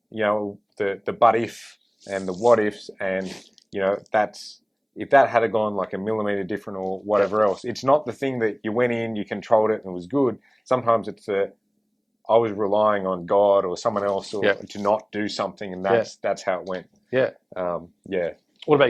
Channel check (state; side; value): identical; both; correlation 1.00